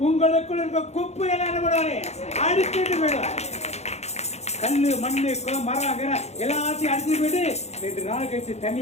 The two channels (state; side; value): late; right; 0.32 ms